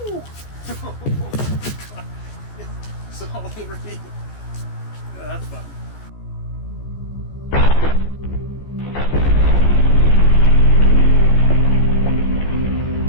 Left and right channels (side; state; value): right; late; 14 ms